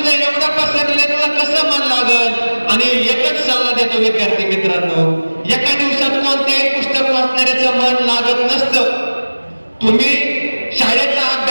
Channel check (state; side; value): inverted; both; correlation -1.00